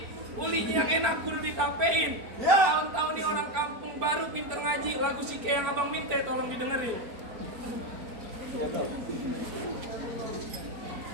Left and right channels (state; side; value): late; left; 4.4 ms